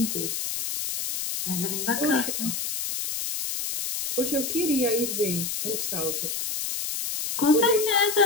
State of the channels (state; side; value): noise; left; hiss, 3 dB below the sound